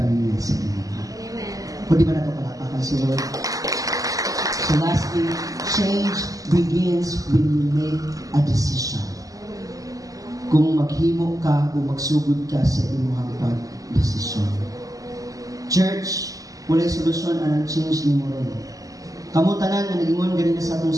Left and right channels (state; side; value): late; left; 0.17 ms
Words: niya sa Ginoo. Kung di ba na ito palapakan si Lord? So lastly, change begins when you make a decision. Kung maghimo ka o magsugod ka sa imong pag-desisyon. Church, walay solusyon anang change ni mo ron. Kamu tanan nga nag-ingon ganina sa atong